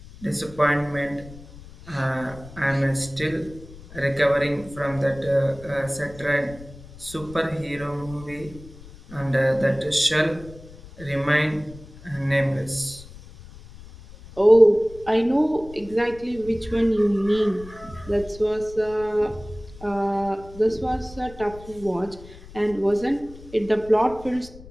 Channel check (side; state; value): left; noise; rumble, 18 dB below the sound